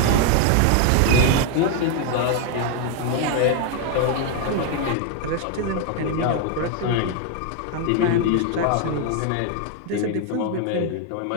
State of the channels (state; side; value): different; both; correlation 0.00